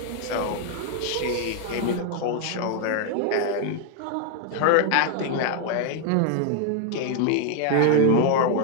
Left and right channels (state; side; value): different; both; correlation 0.01